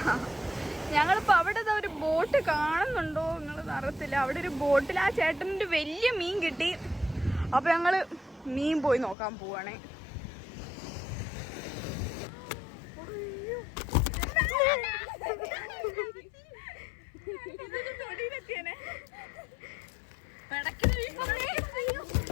ഞങ്ങളിപ്പോൾ അവിടെ ഒരു ബോട്ട് കാണുന്നുണ്ടോ നിങ്ങൾ അറിയത്തില്ല. അവിടെ ഒരു ബോട്ടിൽ ആ ചേട്ടനൊരു വലിയ മീൻ കിട്ടി. അപ്പൊ ഞങ്ങള് മീൻ പോയി നോക്കാൻ പോവാണേ.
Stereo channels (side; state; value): right; drops out; at 9.2 s